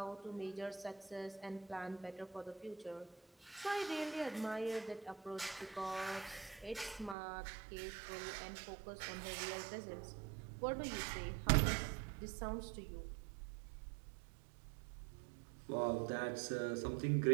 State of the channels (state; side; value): drops out; left; at 7.2 s